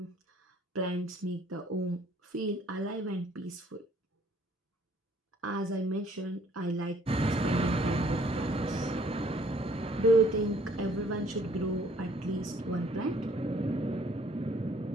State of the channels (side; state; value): both; normal; correlation 0.60